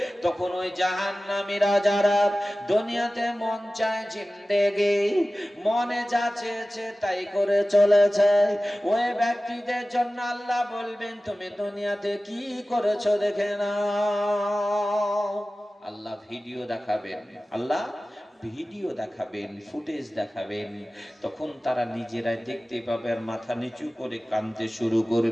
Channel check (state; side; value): normal; both; correlation 0.96